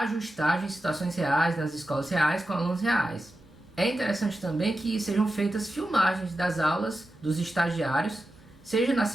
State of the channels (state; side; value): normal; both; correlation 0.91